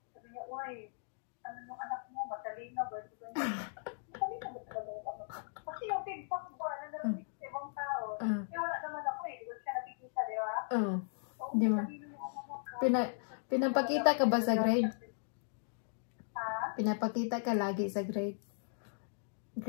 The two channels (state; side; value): silent; right; digital silence